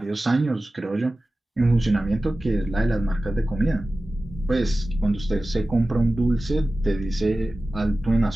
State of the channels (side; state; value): both; normal; correlation 0.95